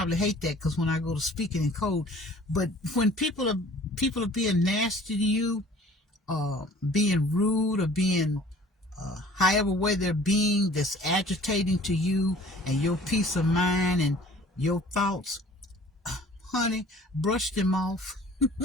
hate that, because when I go to speaking in code, but when people are being nasty to you, being rude, or being however way they're being, that's agitating to you and your peace of mind and your thoughts, honey, brush them off.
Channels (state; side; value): normal; both; correlation 0.50